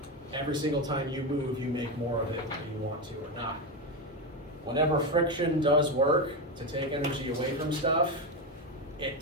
every single time you move, you make more of it whether you want to or not. Whenever friction does work to take energy away from stuff, it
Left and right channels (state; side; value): normal; both; correlation 0.12